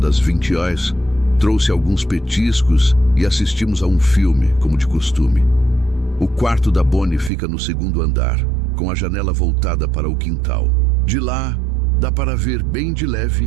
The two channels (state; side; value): drops out; left; at 7.3 s